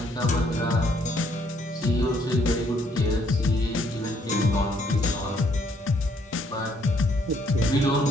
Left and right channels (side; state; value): both; normal; correlation 0.68